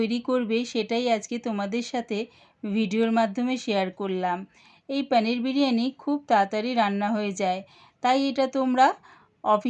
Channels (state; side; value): identical; both; correlation 1.00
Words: করবে সেটাই আজকে তোমাদের সাথে ভিডিওর মাধ্যমে শেয়ার করলাম। এই পনির বিরিয়ানি খুব তাড়াতাড়ি রান্না হয়ে যায়, তাই এটা তোমরা